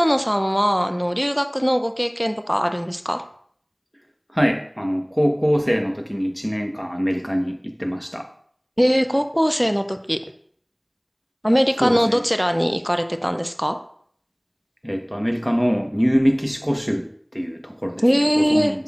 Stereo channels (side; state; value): both; identical; correlation 1.00